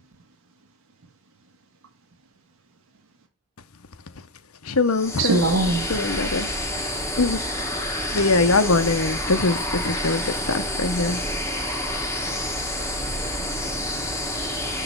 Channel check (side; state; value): both; normal; correlation 0.02